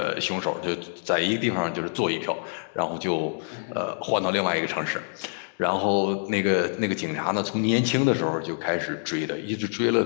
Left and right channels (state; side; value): silent; right; digital silence